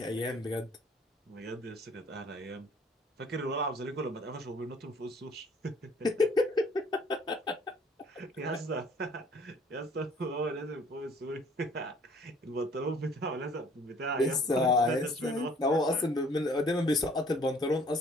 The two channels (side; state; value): both; normal; correlation 0.57